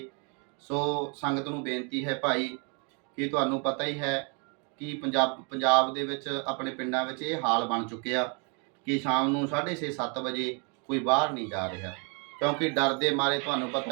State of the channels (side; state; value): left; quieter; 36.0 dB